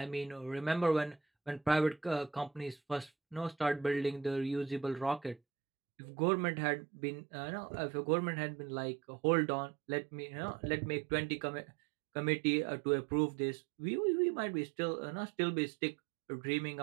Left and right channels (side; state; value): left; drops out; at 5.4 s